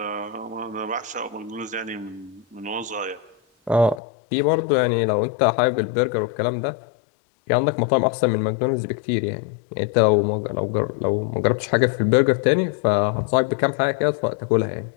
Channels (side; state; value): right; drops out; at 4.0 s